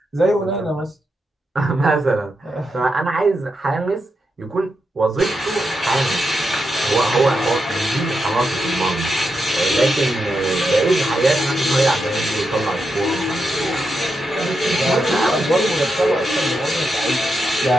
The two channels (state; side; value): normal; both; correlation 0.85